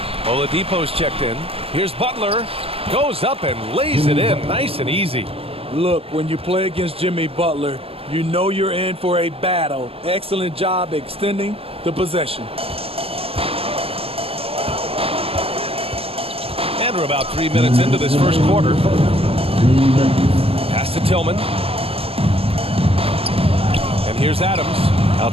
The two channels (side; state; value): left; late; 0.28 ms